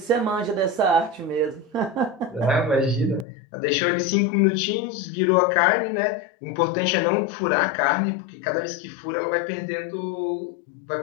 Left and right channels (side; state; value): right; drops out; at 3.2 s